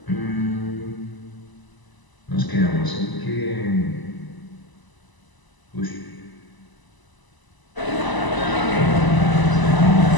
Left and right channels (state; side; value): late; right; 1.0 ms